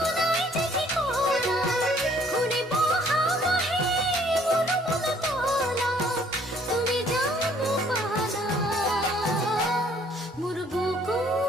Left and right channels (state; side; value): normal; both; correlation 0.61